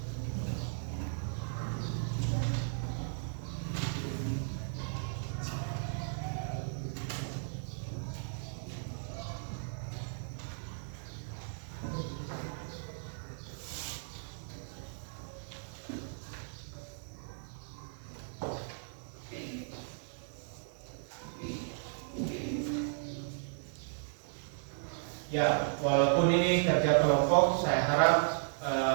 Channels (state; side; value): silent; left; digital silence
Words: Ya, walaupun ini kerja kelompok, saya harap